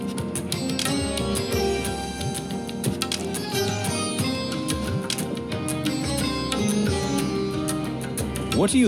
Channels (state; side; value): identical; both; correlation 1.00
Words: What do you